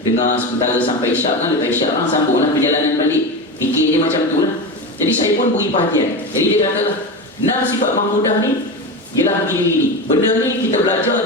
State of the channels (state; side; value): normal; both; correlation 0.21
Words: dengar sementara sampai isyak kan. Lepas isyak kan sambunglah perjalanan balik. Fikir dia macam tu lah. Jadi saya pun beri perhatian. Jadi dia katalah 6 sifat mahmudah ni ialah begini-begini. Benda ni kita belajar